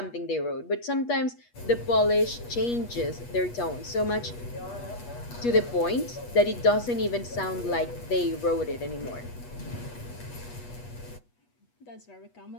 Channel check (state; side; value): late; right; 8.3 ms